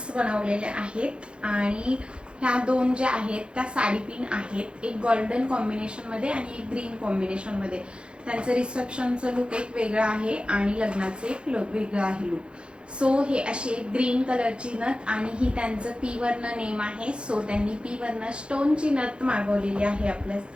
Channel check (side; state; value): left; late; 0.055 ms